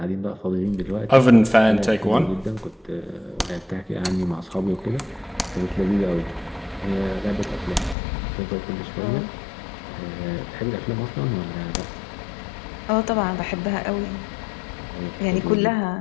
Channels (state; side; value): drops out; right; at 8.0 s